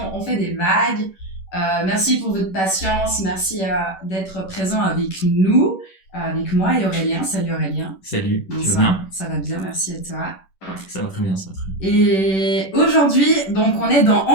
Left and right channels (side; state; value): right; late; 11 ms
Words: On fait des vagues. Merci pour votre patience, merci d'être présent avec nous, avec moi et Aurélien. Salut Aurélien. Salut, tu vas Bonsoir, bien? ça va bien, merci à toi. Ça va très bien, ça va très bien. Et aujourd'hui, donc on est dans On